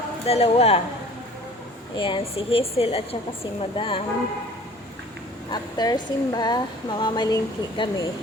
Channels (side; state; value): both; normal; correlation 0.47